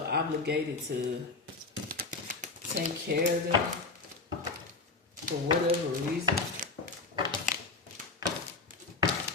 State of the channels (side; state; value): right; quieter; 3.9 dB